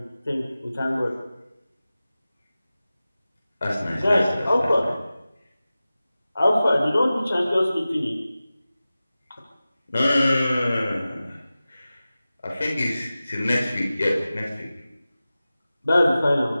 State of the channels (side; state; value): both; inverted; correlation -0.96